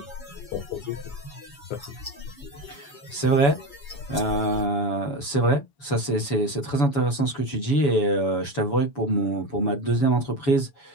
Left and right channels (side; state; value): right; late; 7.1 ms